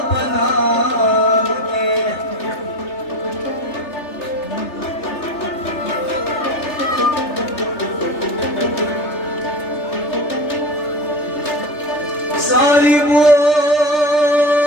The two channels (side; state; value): right; late; 3.3 ms